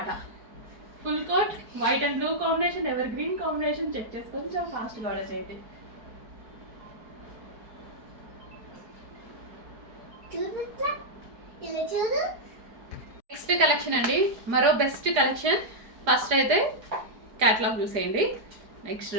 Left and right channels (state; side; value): late; left; 4.9 ms